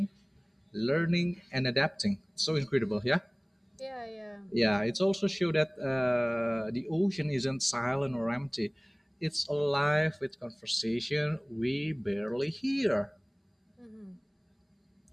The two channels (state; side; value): identical; both; correlation 1.00